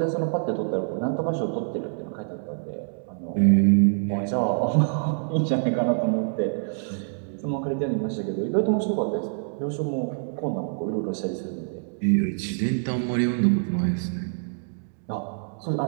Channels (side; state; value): left; silent; digital silence